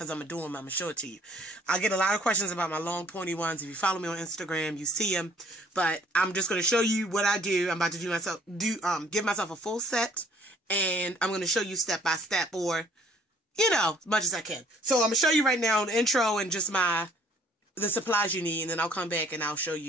I'm going to do them. I'm going to show it to you. I get a lot of questions about my long pointy ones. If you follow me on Instagram, you see them. But I'm just going to show you what I do. I'm about to give myself a full set, and I'm going to show you step by step, or, as much as I can. So I'm going to show you right now the intro and just the supplies you need, and then I'll come back and I'll show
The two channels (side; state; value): both; normal; correlation 0.59